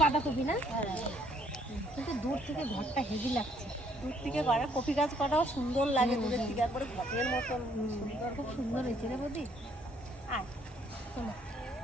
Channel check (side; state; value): both; normal; correlation 0.65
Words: বাঁধাকপি না, কিন্তু দূর থেকে ঘরটা হেভি লাগছে। দূর থেকে করে কপি গাছ কটাও সুন্দর লাগে, দূরের থেকে একবারে ঘরের মতন সুন্দর। খুব সুন্দর হয়েছে রে বৌদি। আয় চলো।